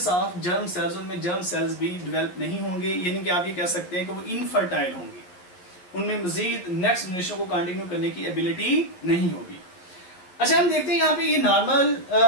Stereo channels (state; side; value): late; right; 11 ms